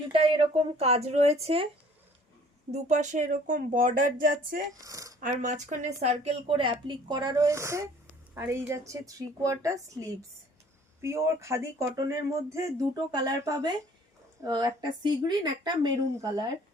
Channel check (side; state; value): both; normal; correlation 0.54